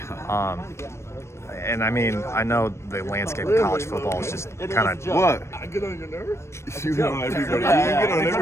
And I mean, I know the landscape of college football is just kind of... What? I get on your nerves? You get on everybody. You get on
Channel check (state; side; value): late; right; 0.13 ms